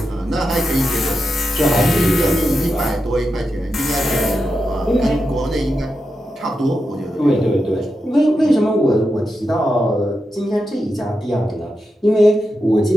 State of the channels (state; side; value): normal; both; correlation 0.88